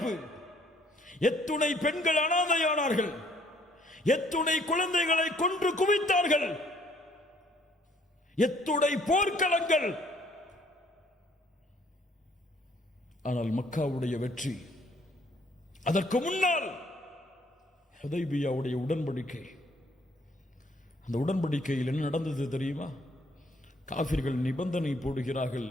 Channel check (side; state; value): both; normal; correlation 0.63